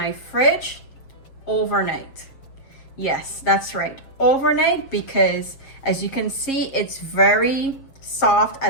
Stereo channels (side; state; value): right; late; 7.3 ms